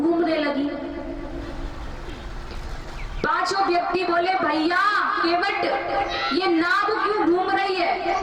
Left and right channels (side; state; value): both; identical; correlation 1.00